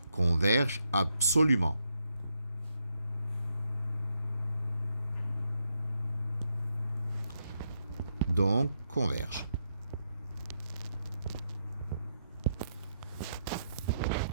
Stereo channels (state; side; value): inverted; both; correlation -0.80